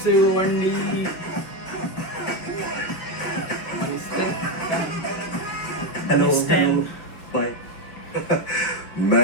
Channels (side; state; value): right; late; 6.2 ms